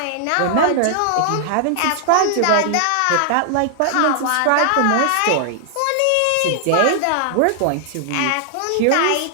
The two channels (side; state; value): both; different; correlation -0.01